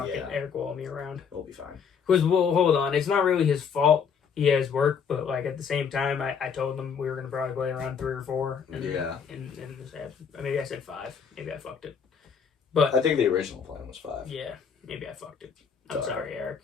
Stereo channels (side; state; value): right; quieter; 6.6 dB